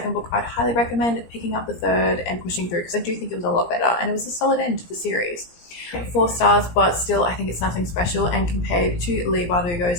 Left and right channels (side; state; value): right; late; 17 ms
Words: book, I'd highly recommend picking up the third and pushing through, because I do think it was a lot better and it was a solid end to the series. 4 stars, but still I think it's nothing special, and compared to Leigh